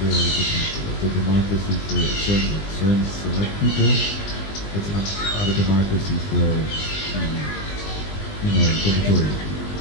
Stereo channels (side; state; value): right; late; 20 ms